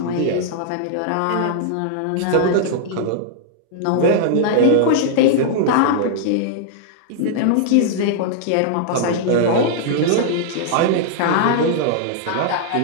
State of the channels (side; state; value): both; different; correlation -0.01